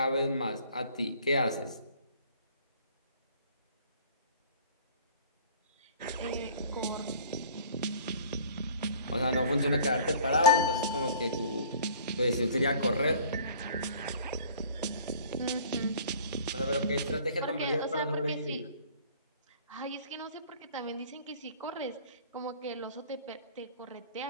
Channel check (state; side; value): inverted; both; correlation -0.50